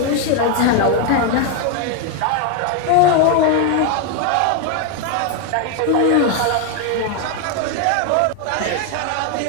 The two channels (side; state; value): both; different; correlation 0.01